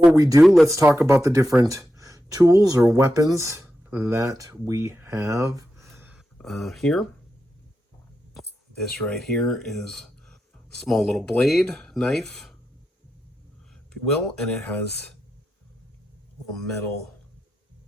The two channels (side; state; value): both; normal; correlation 0.88